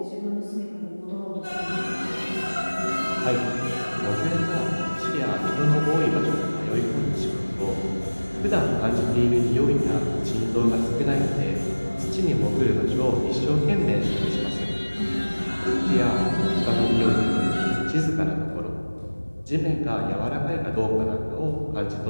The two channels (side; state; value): both; inverted; correlation -1.00